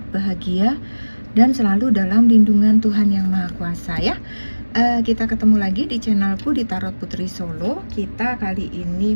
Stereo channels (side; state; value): both; inverted; correlation -1.00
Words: bahagia, dan selalu dalam lindungan Tuhan Yang Maha Kuasa ya. Kita ketemu lagi di channelku di Tarot Putri Solo. Kita kali ini